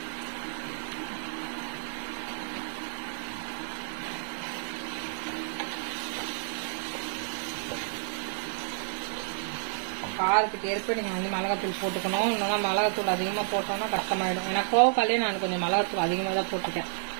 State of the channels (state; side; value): silent; left; digital silence